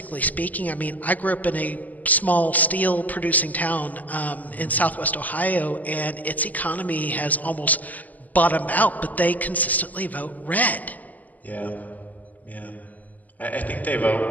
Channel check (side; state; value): right; late; 0.080 ms